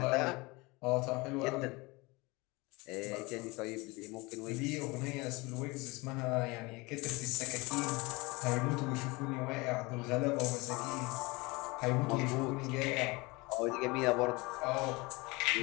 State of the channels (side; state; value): right; quieter; 24.5 dB